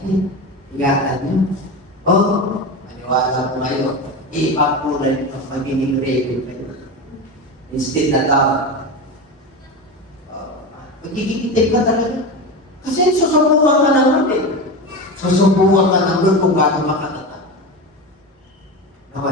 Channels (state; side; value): normal; both; correlation 0.22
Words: ingatan nyo. Maniwala po kayo. Ipakulay nyo magiging ready kayo. Instead na tao. Magiging itim ka talaga. Kasi susubukan ka ng Lord eh. Susubukan ka ng Lord kung gano'n makatatag.